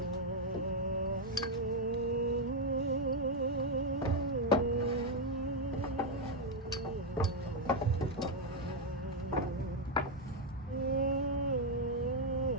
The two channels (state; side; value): normal; both; correlation 0.01